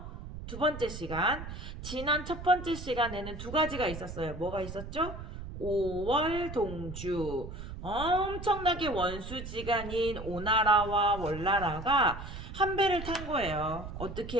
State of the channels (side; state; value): right; noise; rumble, 10 dB below the sound